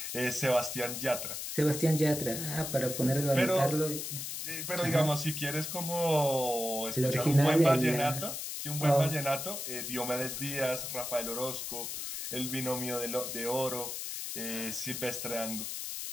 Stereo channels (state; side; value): noise; left; hiss, 5 dB below the sound